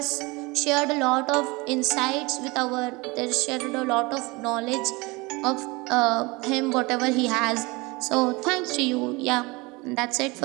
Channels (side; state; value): left; quieter; 24.9 dB